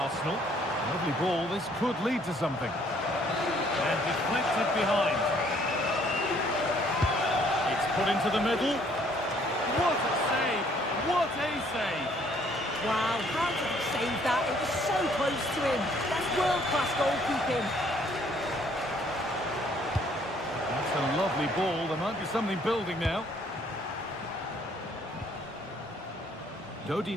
Lovely ball, this could lead to something. And deflected behind. It's put into the middle. What a save! What a save! Wow, how did he save that? It was so close to him. That's world-class goalkeeping. A lovely ball, there might be something building now.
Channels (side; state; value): both; normal; correlation 0.63